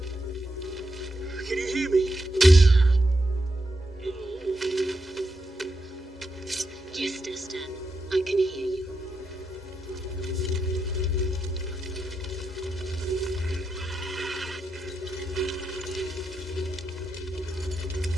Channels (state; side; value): normal; both; correlation 0.86